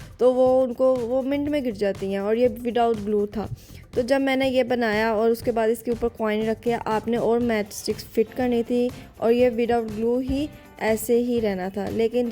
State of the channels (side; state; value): both; identical; correlation 1.00